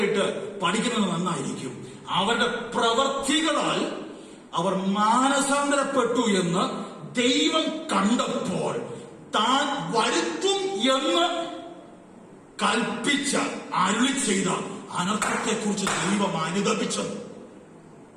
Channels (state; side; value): identical; both; correlation 1.00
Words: പഠിക്കുന്നത് നന്നായിരിക്കും. അവരുടെ പ്രവർത്തികളാൽ അവർ മാനസാന്തരപ്പെട്ടു എന്ന് ദൈവം കണ്ടപ്പോൾ താൻ വരുത്തും എന്ന് കൽപ്പിച്ച അരുളി ചെയ്ത അനർത്ഥത്തെക്കുറിച്ച് ദൈവം അനുദപിച്ചത്.